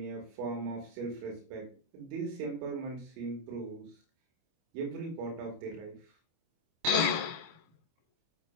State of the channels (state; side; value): late; left; 25 ms